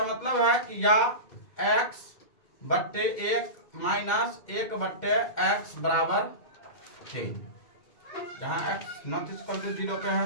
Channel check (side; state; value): right; late; 2.1 ms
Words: मतलब है कि या x/1 माइनस 1/x बराबर 3, जहाँ x नॉट इक्वल टू 0 पे है।